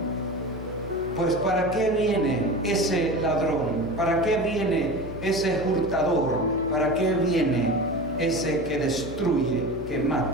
pues ¿para qué viene ese ladrón? ¿Para qué viene ese hurtador? ¿Para qué viene ese que destruye, que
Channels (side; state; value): left; noise; hum, 12 dB below the sound